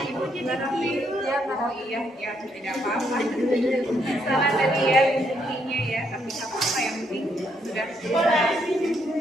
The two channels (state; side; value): normal; both; correlation 0.74